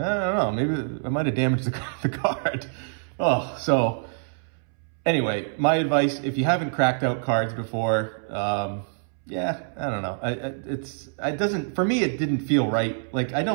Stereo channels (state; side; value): silent; left; 61 dB below the other